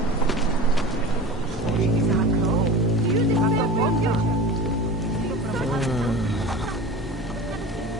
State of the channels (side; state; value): both; normal; correlation 0.34